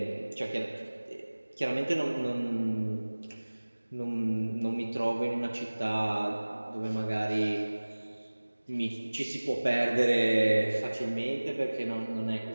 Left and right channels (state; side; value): inverted; both; correlation -1.00